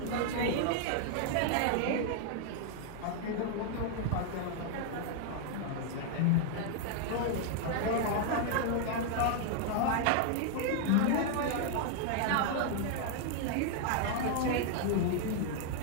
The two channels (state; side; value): different; both; correlation 0.00